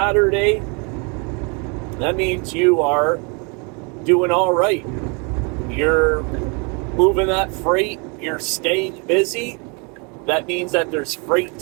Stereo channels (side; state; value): left; quieter; 33.6 dB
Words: that means you are doing all right. You're moving that freight, you're staying busy. That means that there's freight